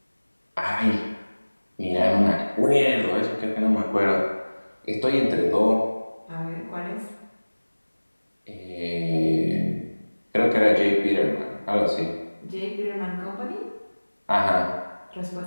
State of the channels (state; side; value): inverted; both; correlation -1.00